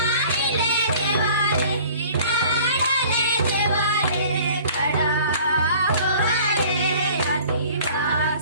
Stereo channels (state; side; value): inverted; both; correlation -0.48